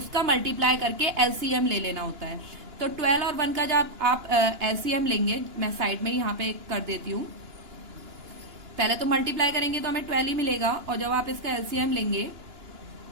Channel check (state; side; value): late; left; 2.9 ms